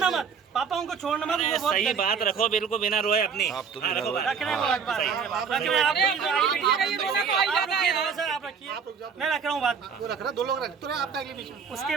मत, पापा उनको छोड़ना मत। वो बहुत सही बात रखो, बिल्कुल बिना रोए अपनी। आप रख रहे हैं, आप रखिए, मैं रख रहा हूँ बात। वो रख रहा, 2 लोग रख तो आपका अगले बीच में।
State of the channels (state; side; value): quieter; left; 6.3 dB